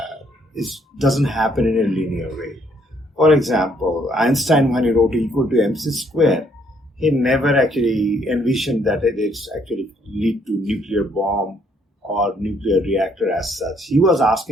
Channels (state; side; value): normal; both; correlation 0.68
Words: doesn't happen in a linear way. For example, Einstein, when he wrote E equal to mc square, he never actually envisioned that it's actually lead to nuclear bomb or nuclear reactor as such. He was